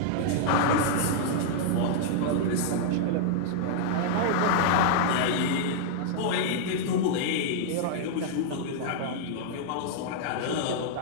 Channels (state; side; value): different; both; correlation -0.01